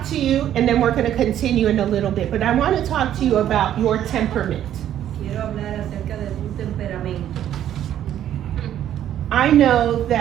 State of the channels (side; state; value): left; quieter; 11.1 dB